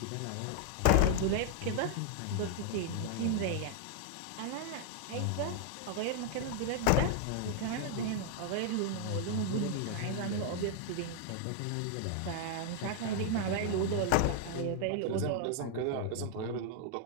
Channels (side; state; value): both; different; correlation 0.00